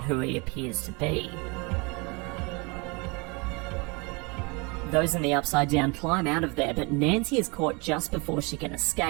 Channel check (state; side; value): quieter; left; 29.2 dB